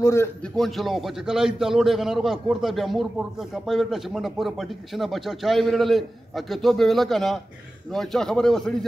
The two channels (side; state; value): both; normal; correlation 0.95